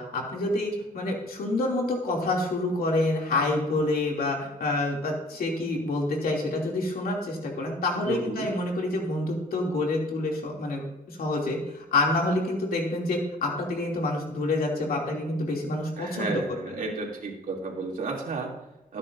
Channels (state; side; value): normal; both; correlation 0.50